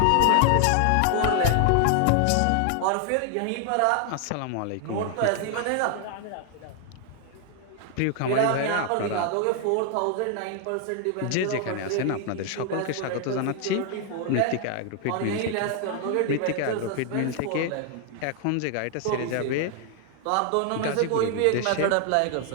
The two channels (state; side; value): different; both; correlation 0.00